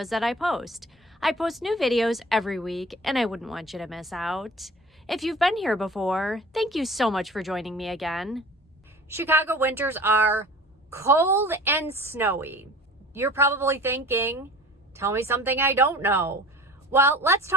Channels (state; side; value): normal; both; correlation 0.43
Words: that I post. I post new videos every week, and I wouldn't want you to miss out. If you've been here before, thank you so much for joining me again. Chicago winters are cold and snowy. You're probably thinking, tell me something I don't know. Well, let's